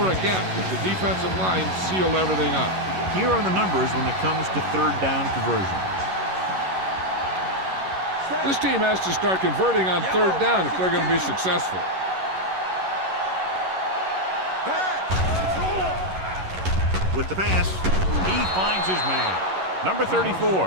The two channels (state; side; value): late; left; 11 ms